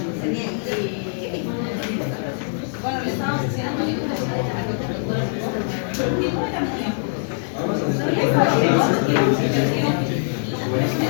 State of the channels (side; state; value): right; silent; digital silence